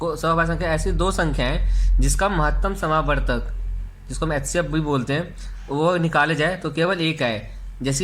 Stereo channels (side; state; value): both; identical; correlation 1.00